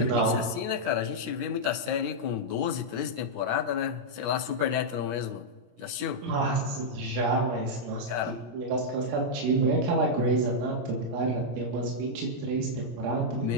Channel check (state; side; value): late; left; 17 ms